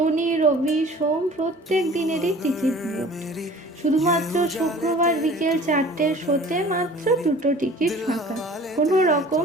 রবি সোম প্রত্যেক দিনেরই টিকিট বুকড। শুধুমাত্র শুক্রবার বিকেল 4টের শোতে মাত্র 2টো টিকিট ফাঁকা। কোনো রকম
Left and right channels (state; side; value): normal; both; correlation 0.46